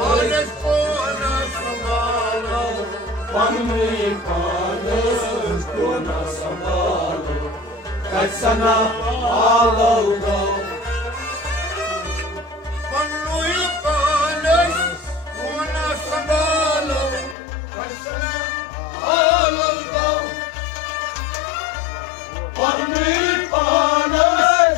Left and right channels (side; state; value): right; drops out; at 17.4 s